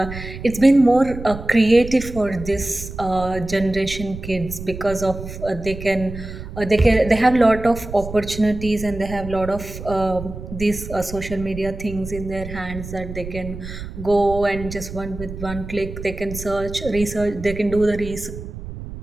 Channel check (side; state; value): right; noise; rumble, 10 dB below the sound